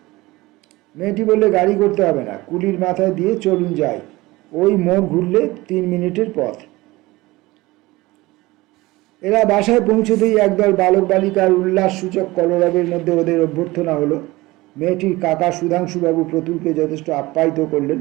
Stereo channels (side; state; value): left; quieter; 20.2 dB